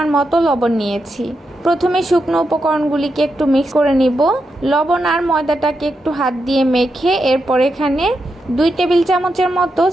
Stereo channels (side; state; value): both; normal; correlation 0.85